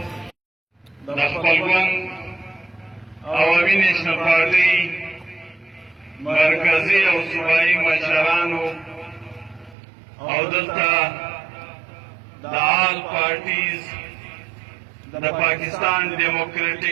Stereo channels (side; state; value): left; drops out; at 9.8 s